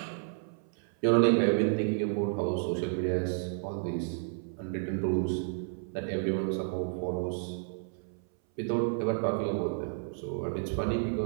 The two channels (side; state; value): left; silent; 57 dB below the other